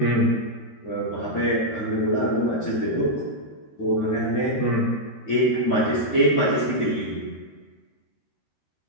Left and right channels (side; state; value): right; late; 13 ms